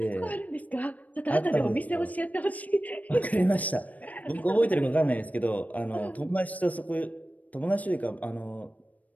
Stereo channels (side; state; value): right; late; 0.073 ms